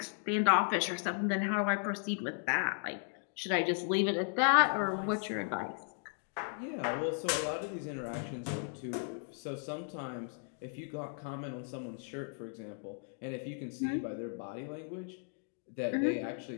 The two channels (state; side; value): silent; right; 54 dB below the other